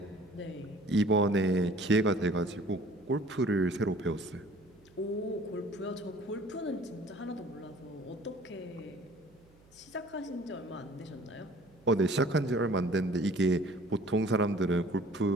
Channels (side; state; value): right; noise; hum, 29 dB below the sound